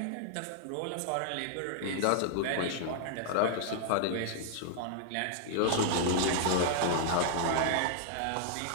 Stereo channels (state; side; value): different; both; correlation -0.01